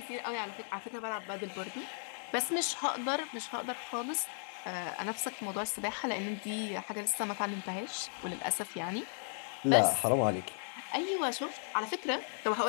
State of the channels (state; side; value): silent; right; digital silence